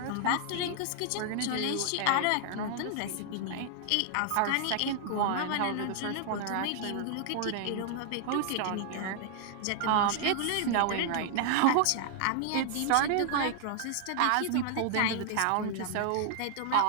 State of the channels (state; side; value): different; both; correlation 0.00